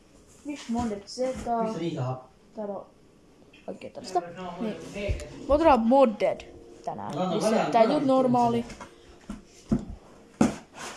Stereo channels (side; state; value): both; identical; correlation 1.00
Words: Fish modded zeta. Täällä on oikein tällaista. Niin. Me otetaan modded tänään. Missä tää ei tuu normaali.